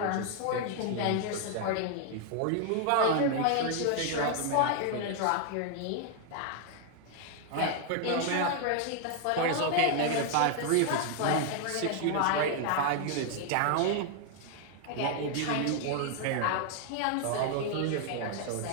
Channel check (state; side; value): different; both; correlation 0.00